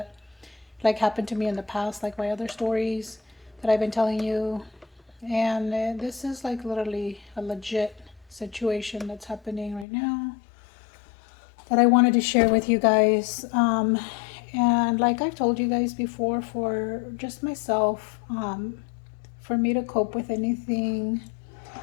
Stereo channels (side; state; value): right; drops out; at 9.9 s